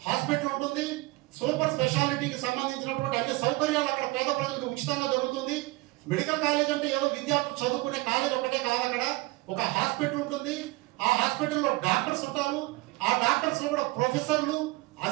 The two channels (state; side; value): quieter; left; 22.0 dB